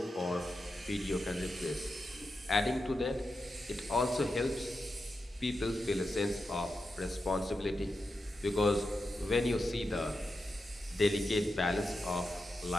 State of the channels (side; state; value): both; normal; correlation 0.89